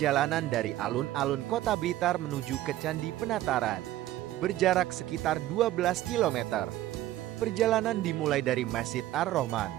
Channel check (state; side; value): quieter; left; 14.5 dB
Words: dari alun-alun Kota Blitar menuju ke Candi Penataran, berjarak sekitar 12 km. Perjalanan dimulai dari Masjid Ar-Rahman